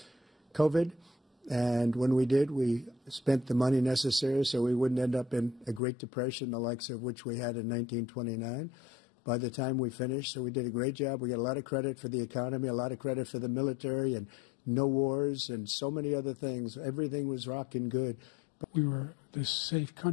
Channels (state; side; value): drops out; right; at 5.8 s